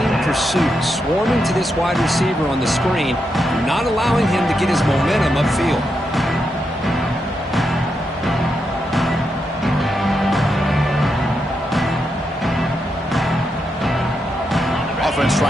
pursuit. Swarming to this wide receiver on the screen, not allowing him to get his momentum upfield. Offense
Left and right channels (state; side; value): normal; both; correlation 0.84